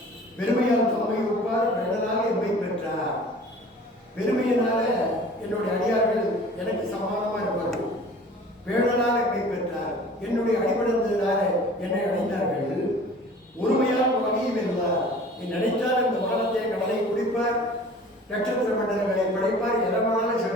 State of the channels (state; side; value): normal; both; correlation 0.45